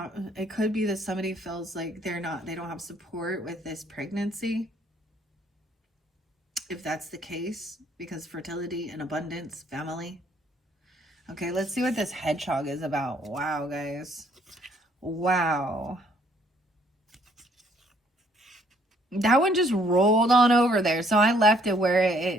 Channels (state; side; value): normal; both; correlation 0.64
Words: it could be that somebody feels like they don't have support with this pregnancy. If that's the case, because fertility and abundance, family. Okay, let's see what this hedgehog is about. Wow, guys. Wow. That one just rolled on over there, so I left it where it